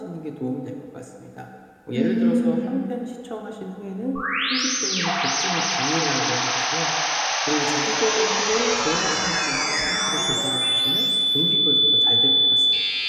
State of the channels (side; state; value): both; identical; correlation 1.00